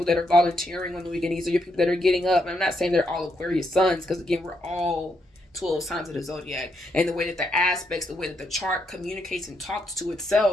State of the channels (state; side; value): normal; both; correlation 0.78